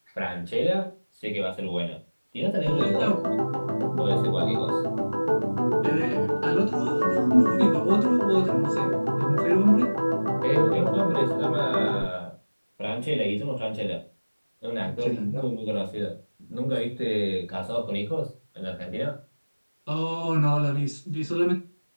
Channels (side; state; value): both; inverted; correlation -1.00